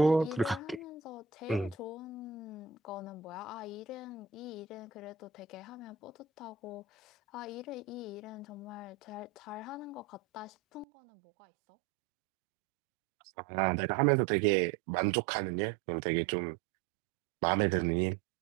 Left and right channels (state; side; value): drops out; left; at 10.9 s